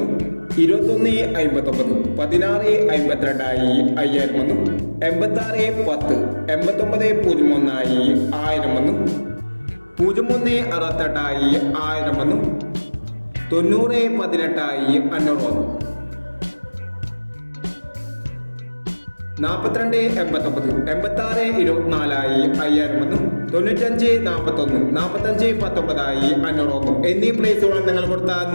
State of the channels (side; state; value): both; inverted; correlation -1.00